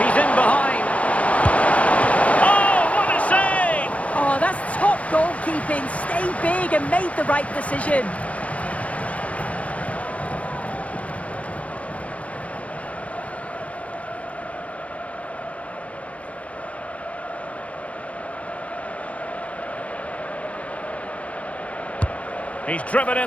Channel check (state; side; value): late; right; 0.065 ms